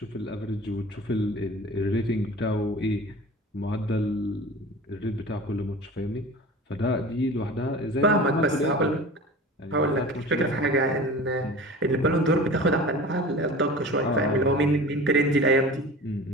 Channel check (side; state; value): both; normal; correlation 0.37